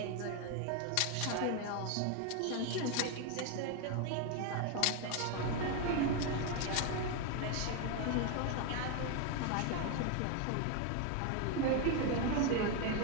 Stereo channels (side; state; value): both; different; correlation 0.01